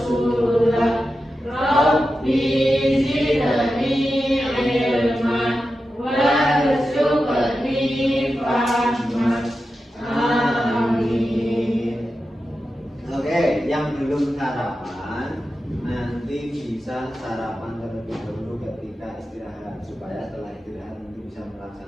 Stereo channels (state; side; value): normal; both; correlation 0.91